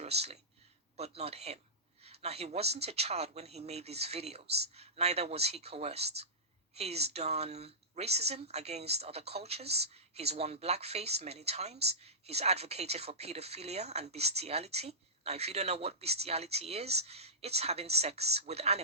but not him. Now, he wasn't a child when he made these videos, neither was he coerced. He's done racism against other cultures. He's worn blackface many times. He's advocated for pedophilia and bestiality. Now, if you don't know what bestiality is, it's having sex with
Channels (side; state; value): both; normal; correlation -0.16